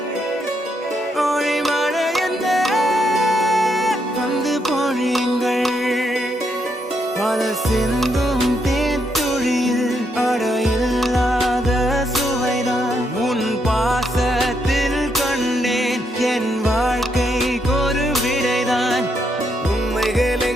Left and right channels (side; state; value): both; normal; correlation 0.78